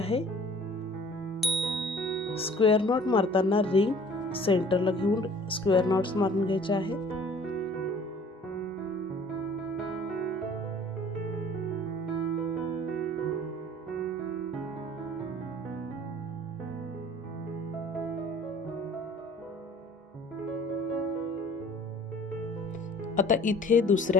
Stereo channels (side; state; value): both; normal; correlation 0.51